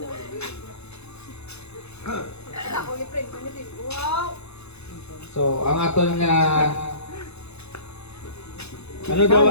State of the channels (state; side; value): late; right; 0.80 ms